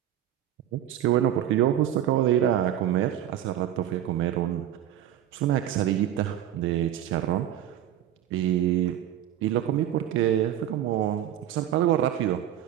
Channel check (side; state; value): left; quieter; 11.5 dB